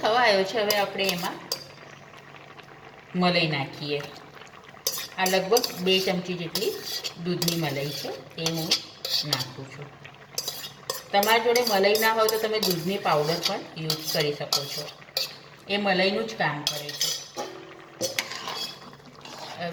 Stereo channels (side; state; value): both; identical; correlation 1.00